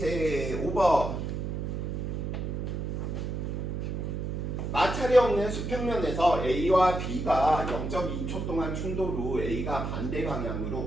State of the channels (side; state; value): right; noise; hum, 3 dB below the sound